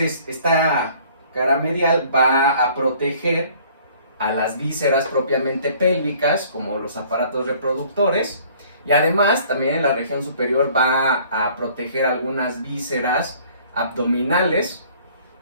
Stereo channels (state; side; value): inverted; both; correlation -0.55